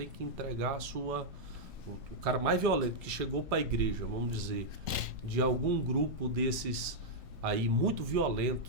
que entregar a sua... O cara mais violento que chegou para a igreja, vamos dizer, de algum grupo desses aí muito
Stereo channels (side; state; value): both; normal; correlation -0.05